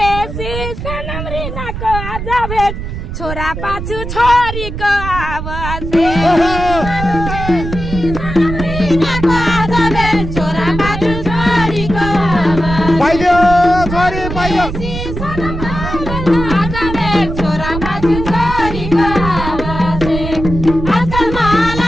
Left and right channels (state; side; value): noise; right; rumble, 6 dB below the sound